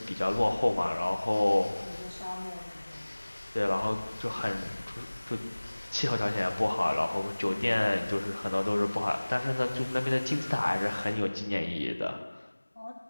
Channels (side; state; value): both; inverted; correlation -1.00